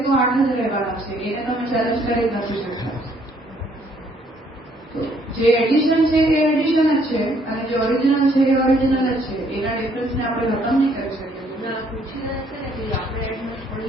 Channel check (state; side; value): normal; both; correlation 0.66